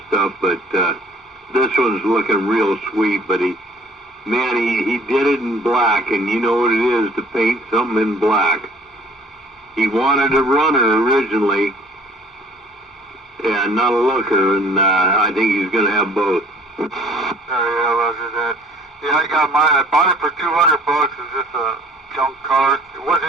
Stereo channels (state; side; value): normal; both; correlation 0.54